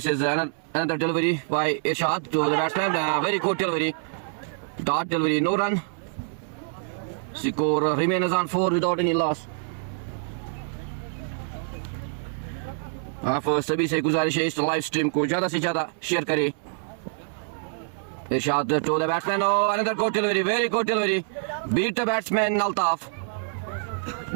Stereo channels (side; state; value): left; silent; 61 dB below the other